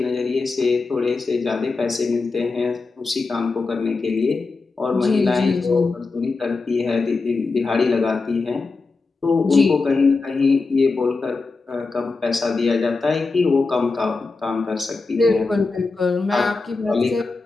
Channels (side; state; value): right; quieter; 4.0 dB